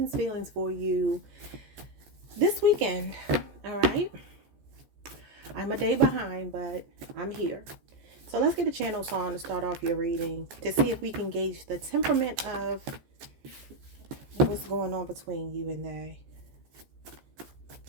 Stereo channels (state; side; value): late; left; 14 ms